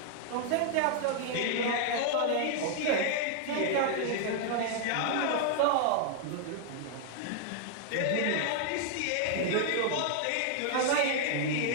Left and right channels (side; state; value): both; different; correlation 0.00